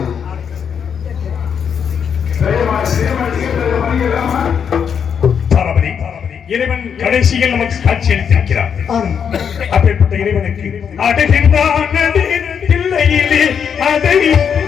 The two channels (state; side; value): quieter; right; 7.4 dB